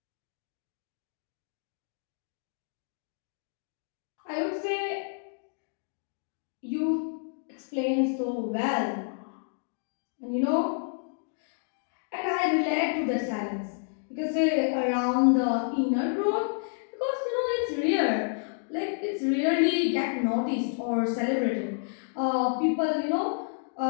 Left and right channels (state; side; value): silent; right; digital silence